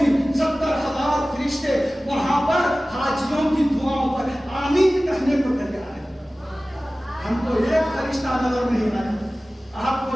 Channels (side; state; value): both; normal; correlation 0.97